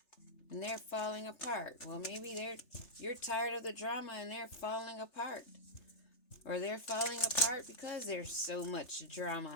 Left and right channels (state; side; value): late; right; 3.3 ms